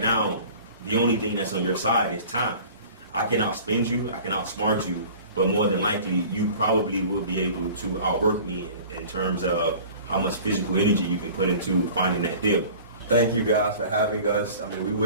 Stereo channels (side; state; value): both; inverted; correlation -0.44